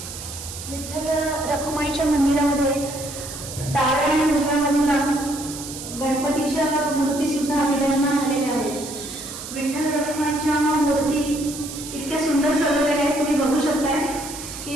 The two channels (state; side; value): noise; right; hiss, 10 dB below the sound